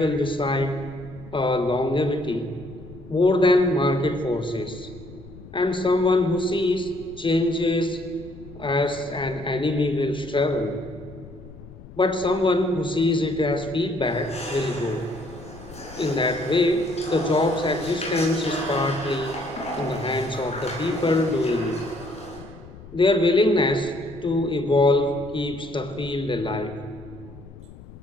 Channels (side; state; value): left; noise; rumble, 18 dB below the sound